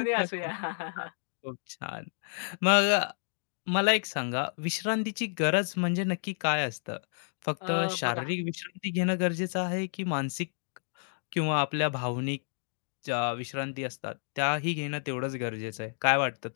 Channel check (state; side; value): silent; right; digital silence